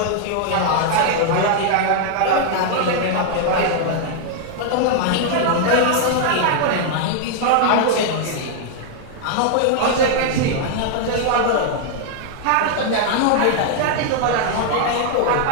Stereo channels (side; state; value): both; different; correlation 0.00